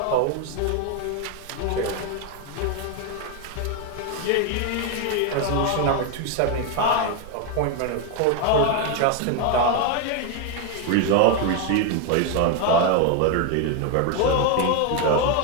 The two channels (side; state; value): both; different; correlation 0.02